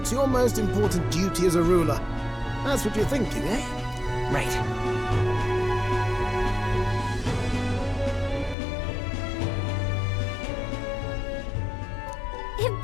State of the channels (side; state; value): right; drops out; at 8.6 s